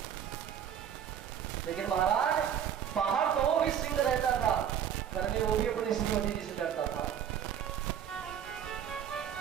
लेकिन महाराज बाहर तो वो भी सिंह रहता था, घर में वो भी अपनी श्रीमती जी से डरता था।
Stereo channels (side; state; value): left; quieter; 9.0 dB